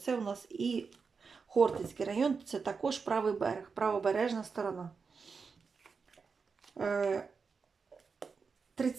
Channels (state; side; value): quieter; left; 5.2 dB